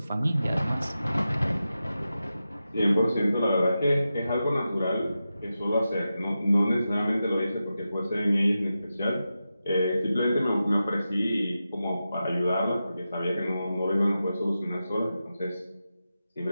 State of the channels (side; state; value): both; inverted; correlation -0.91